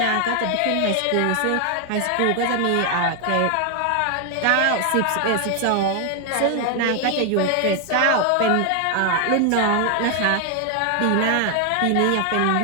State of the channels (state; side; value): different; both; correlation 0.00